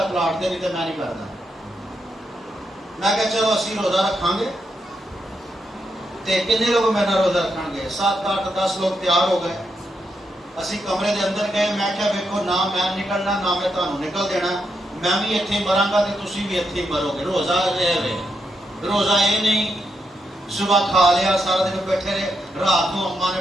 پلاٹ دے، نہیں تو میں نہیں کرتا۔ میں کہا چلو اسی روزہ رکھاں گے، تے کتنے لوگ میرے روزہ رکھیں گے؟ 7 8 10 لوگ تیار ہو گئے۔ اسی کمرے دے اندر گئے، میں کہا ویکھو نہ میں نکلنا نہ میں تانوں نکل دینا، میں بھی اتنے مراں گا تے تسی بھی اتنے مرو گے۔ روزہ روزہ یہ نہیں صبح کھا لیا سارا دن بیٹھے رہے، رات کو اماں نے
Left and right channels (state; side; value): normal; both; correlation 0.82